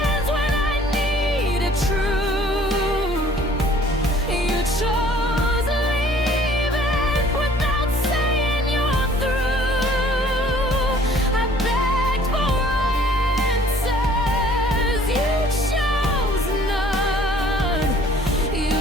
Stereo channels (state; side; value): normal; both; correlation 0.55